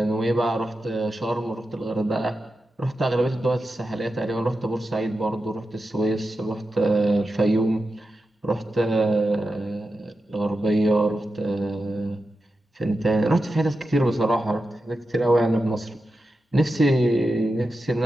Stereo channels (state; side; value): normal; both; correlation 0.90